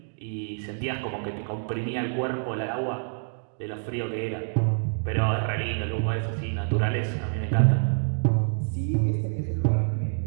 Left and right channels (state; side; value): silent; left; digital silence